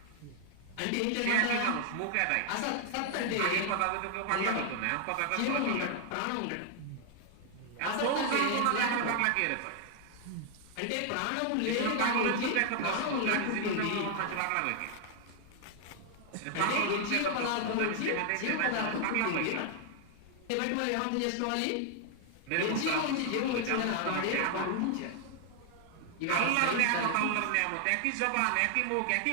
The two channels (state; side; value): different; both; correlation 0.00